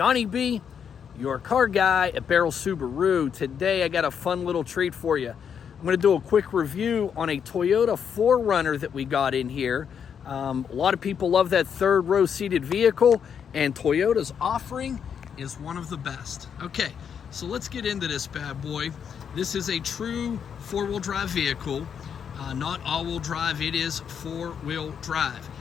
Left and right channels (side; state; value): right; quieter; 7.6 dB